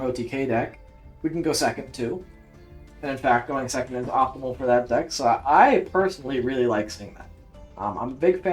OTK deck, we can go second too. And in fact, going second is optimal for that deck, so I personally really like seeing that. I'm a big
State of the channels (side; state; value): both; identical; correlation 1.00